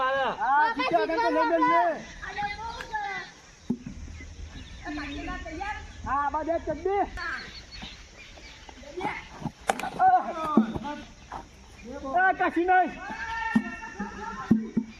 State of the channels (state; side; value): identical; both; correlation 1.00